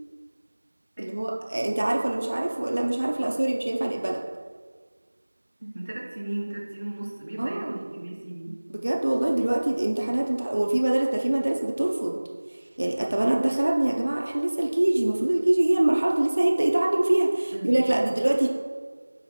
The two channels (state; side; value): inverted; both; correlation -1.00